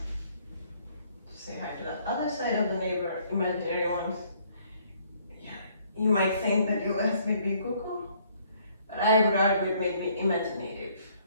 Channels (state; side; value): inverted; both; correlation -0.64